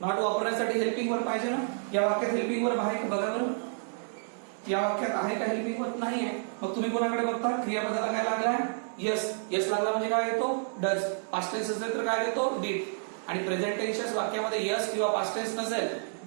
नॉट वापरण्यासाठी हेल्पिंग वर्ब पाहिजे ना. या वाक्यात हेल्पिंग वर्ब आहे का बघा बरं, या वाक्यात आहे का हेल्पिंग वर्ब, नाही आहे. मग तुम्ही कोणाकडे बघता, क्रियापदाला काय लागलाय, यस. यस लागला म्हणजे काय येतो, डज. पास्ट टेन्स असेल तर काय येतो, डीड. आणि प्रेझेंट टेन्स वाक्यामध्ये यस किंवा पास्ट टेन्स नसेल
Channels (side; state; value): left; silent; digital silence